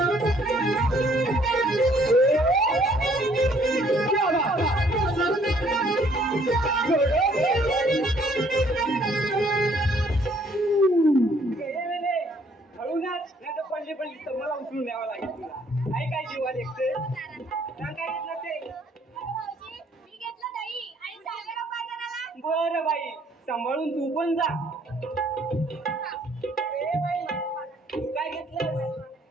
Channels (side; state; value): both; normal; correlation 0.63